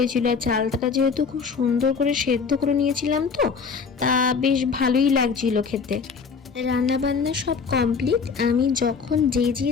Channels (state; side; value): quieter; right; 5.6 dB